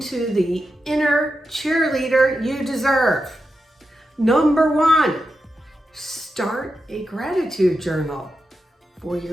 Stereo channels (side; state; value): both; normal; correlation 0.88